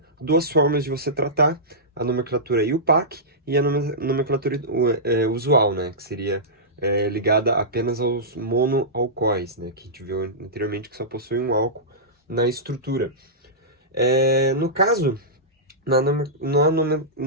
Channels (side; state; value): both; normal; correlation -0.15